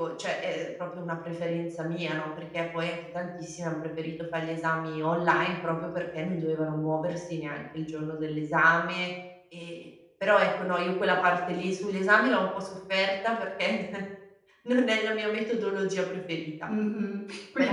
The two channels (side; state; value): both; identical; correlation 1.00